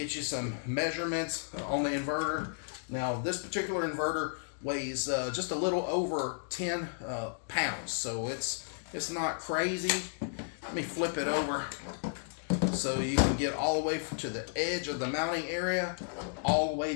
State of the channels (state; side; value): silent; right; digital silence